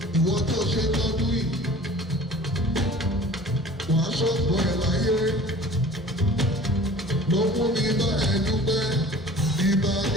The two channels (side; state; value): both; normal; correlation 0.45